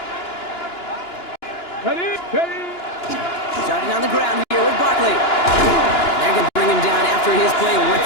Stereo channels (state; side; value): late; right; 2.9 ms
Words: Starting on the ground here with Barkley. They're going to bring him down after his play